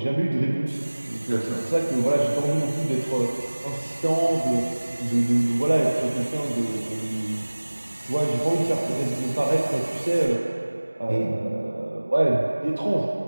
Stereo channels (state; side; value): inverted; both; correlation -1.00